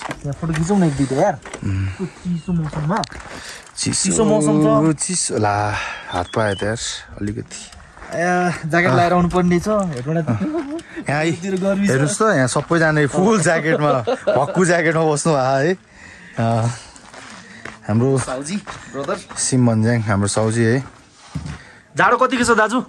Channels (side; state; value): both; identical; correlation 1.00